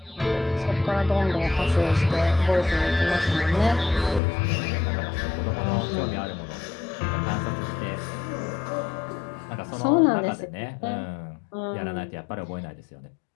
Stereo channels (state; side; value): drops out; right; at 4.2 s